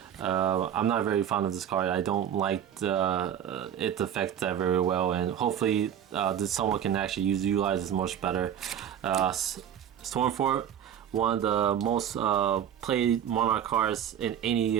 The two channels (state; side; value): quieter; left; 9.6 dB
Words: I'm not very fond of this card. I don't like its effect that very well, and hopefully someone can actually utilize this much better. Stormforce, one of the most played Monarch cards in any